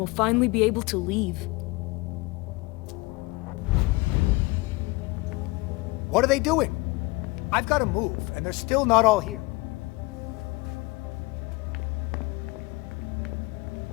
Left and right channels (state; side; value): quieter; right; 23.9 dB